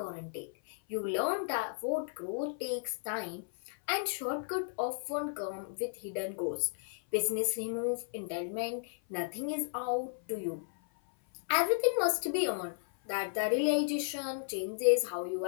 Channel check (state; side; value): silent; right; 55 dB below the other